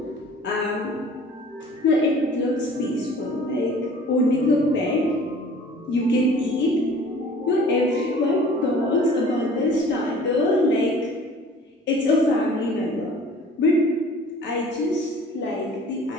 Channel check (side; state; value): both; normal; correlation 0.48